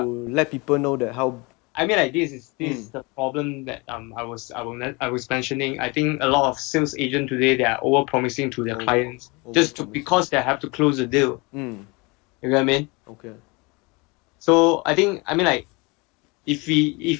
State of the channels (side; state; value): right; quieter; 27.2 dB